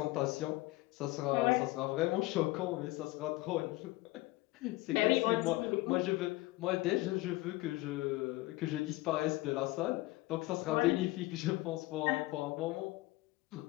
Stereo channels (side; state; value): right; quieter; 20.1 dB